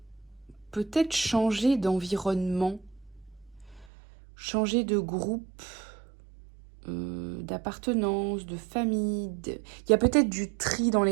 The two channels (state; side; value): drops out; left; at 3.9 s